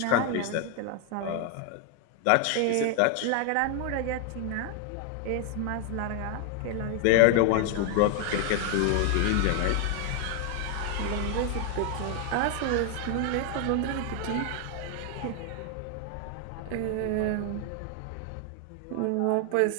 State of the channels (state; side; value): different; both; correlation 0.00